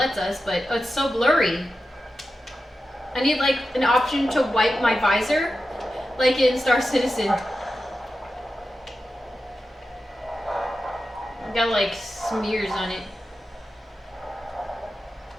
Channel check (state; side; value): normal; both; correlation 0.92